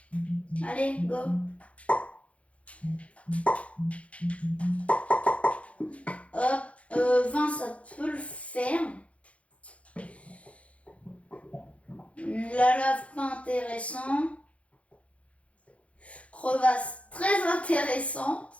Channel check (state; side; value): late; right; 0.063 ms